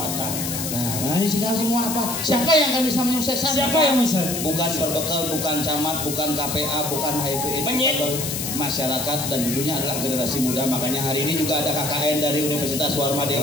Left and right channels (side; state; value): left; noise; hiss, 4 dB below the sound